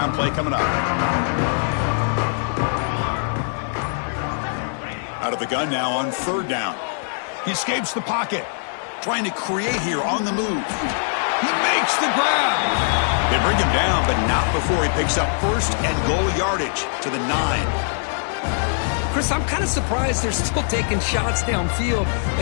Play coming up. Out of the gun now on third down. He escapes the pocket. Trying to create here on the move. He makes the grab. They bring him down, but not before he picks up first and goal yardage to the 9. Chris, I'm kind of surprised they're still taking shots downfield.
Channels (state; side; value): silent; right; digital silence